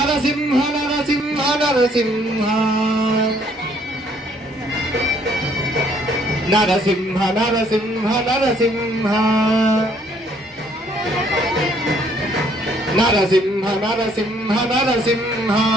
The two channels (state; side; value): normal; both; correlation 0.64